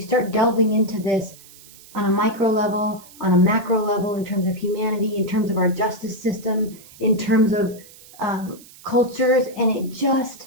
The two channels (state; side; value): noise; right; hiss, 22 dB below the sound